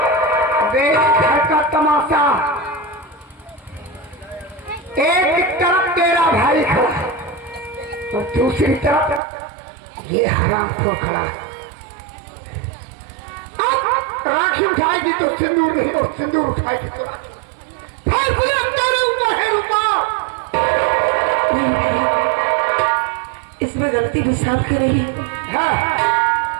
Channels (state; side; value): drops out; left; at 9.2 s